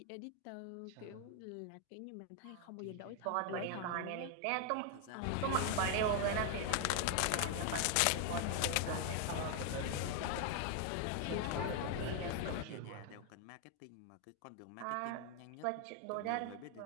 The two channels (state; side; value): different; both; correlation 0.01